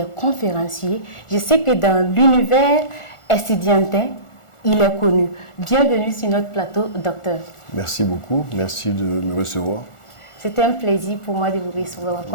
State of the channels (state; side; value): late; right; 1.4 ms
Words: conférencier. Je sais que dans l'univers estudiantin, il est connu. Bienvenue sur notre plateau, docteur. Merci beaucoup, merci de me recevoir. C'est un plaisir pour moi de vous recevoir,